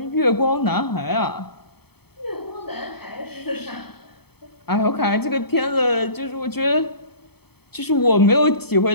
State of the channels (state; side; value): late; right; 0.97 ms